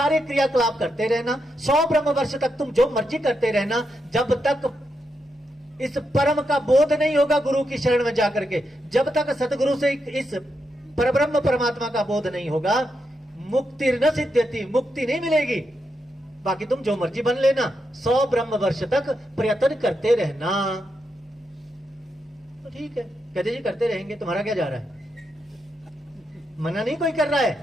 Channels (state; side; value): normal; both; correlation 0.84